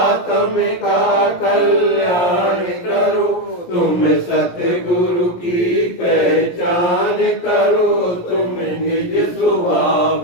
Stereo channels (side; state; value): right; late; 17 ms